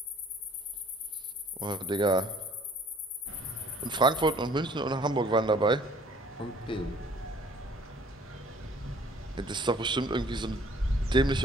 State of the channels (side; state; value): both; normal; correlation 0.55